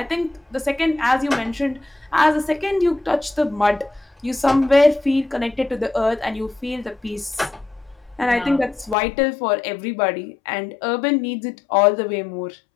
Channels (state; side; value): drops out; right; at 9.0 s